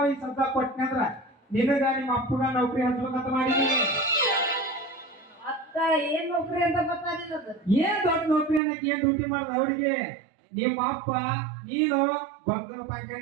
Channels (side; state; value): left; drops out; at 8.6 s